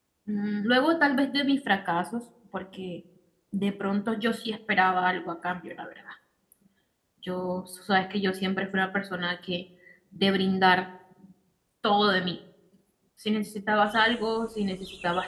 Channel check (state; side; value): identical; both; correlation 1.00